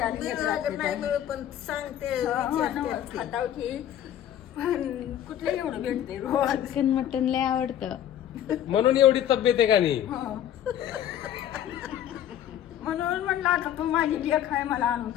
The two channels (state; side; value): quieter; right; 10.9 dB